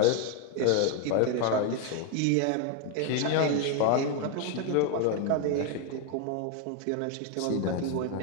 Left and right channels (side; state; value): both; different; correlation 0.01